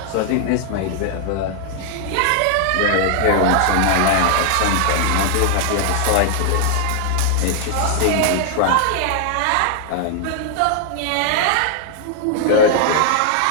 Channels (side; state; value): both; different; correlation 0.00